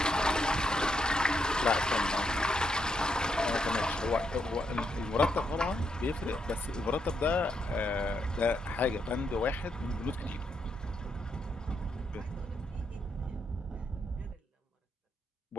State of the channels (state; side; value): normal; both; correlation 0.79